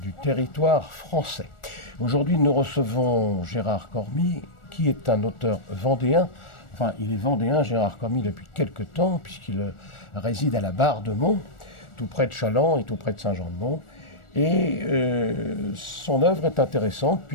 territoire français. Aujourd'hui, nous recevons Gérard Cormy, qui est un auteur vendéen. Enfin, il est vendéen, Gérard Cormy, depuis quelque temps, puisqu'il réside à la Barre-de-Mont, tout près de Challans et tout près de Saint-Jean-de-Mont. Et son œuvre est intéressante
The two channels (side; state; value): right; late; 1.4 ms